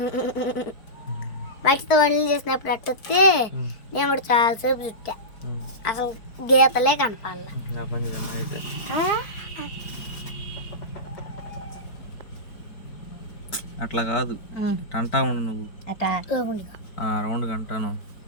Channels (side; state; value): right; late; 4.5 ms